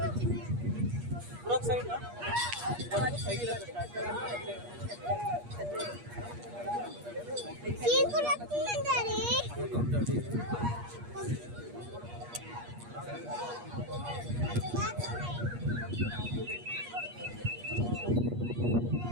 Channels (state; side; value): late; left; 8.4 ms